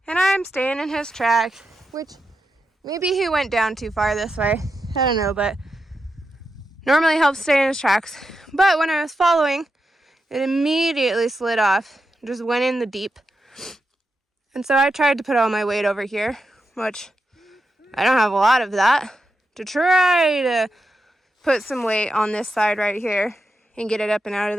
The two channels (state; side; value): normal; both; correlation 0.87